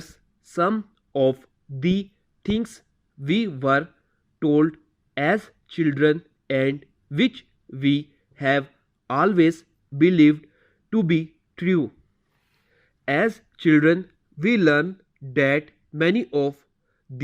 some of the things we were told as children and which we have always believed to be true. As children, we learn that many of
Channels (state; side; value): identical; both; correlation 1.00